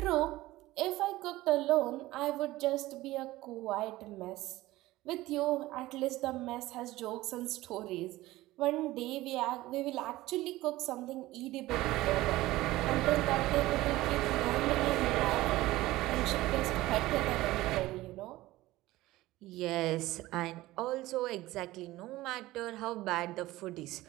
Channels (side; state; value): left; quieter; 17.6 dB